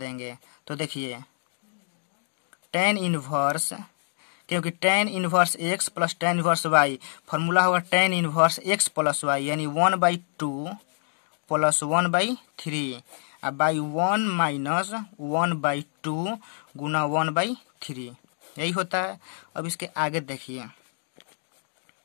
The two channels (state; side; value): silent; right; 60 dB below the other